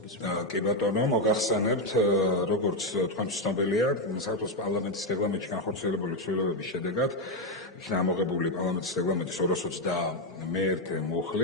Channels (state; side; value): normal; both; correlation 0.04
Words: კი ბატონო, მოგახსენებთ, როგორც თქვენ ცნობილია, საქართველოს პარლამენტის რეგლამენტში განხორციელებული ცვლილებების შედეგად იქნა ამოღებული პარლამენტის რეგლამენტის 221